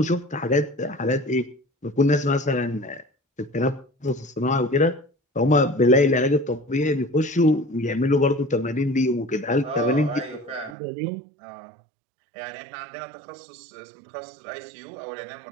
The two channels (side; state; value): left; drops out; at 10.8 s